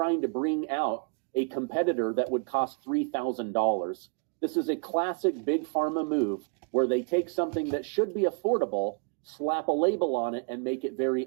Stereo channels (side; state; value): left; quieter; 37.0 dB